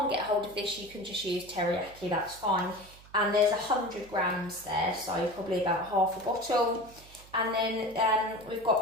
get hold of this, you can just use teriyaki, that's fine. And there's 100 grams there, so probably about half a bottle. And then we've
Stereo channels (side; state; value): right; noise; hum, 22 dB below the sound